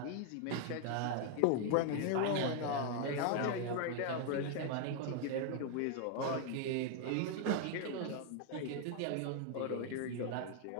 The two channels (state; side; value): different; both; correlation 0.00